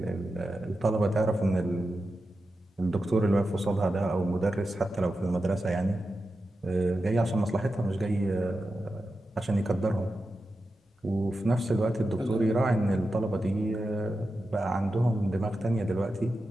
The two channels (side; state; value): both; normal; correlation 0.91